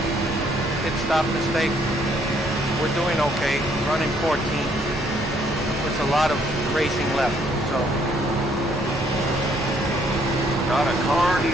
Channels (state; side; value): normal; both; correlation 0.67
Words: pit stop mistake, we're doing okay. Running 14th. There's a lot of racing left, so. Got a car